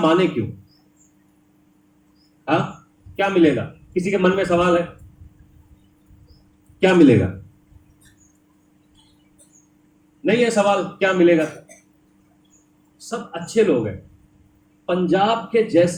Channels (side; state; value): both; identical; correlation 1.00